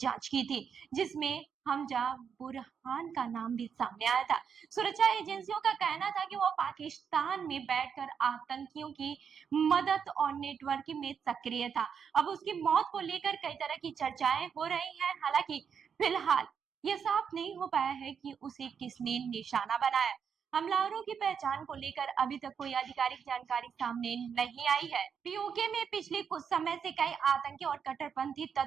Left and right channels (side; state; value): left; quieter; 7.0 dB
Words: की थी, जिसमें हमजा बुरहान का नाम भी सामने आया था। सुरक्षा एजेंसियों का कहना था कि वो पाकिस्तान में बैठकर आतंकियों की मदद और नेटवर्किंग में सक्रिय था। अब उसकी मौत को लेकर कई तरह की चर्चाएं हो रही हैं। हालांकि फिलहाल ये साफ नहीं हो पाया है कि उसे किसने निशाना बनाया। हमलावरों की पहचान को लेकर अभी तक कोई आधिकारिक जानकारी सामने नहीं आई है। पीओके में पिछले कुछ समय से कई आतंकी और कट्टरपंथी